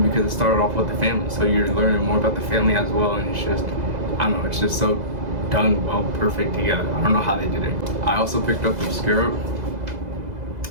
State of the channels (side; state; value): left; late; 2.0 ms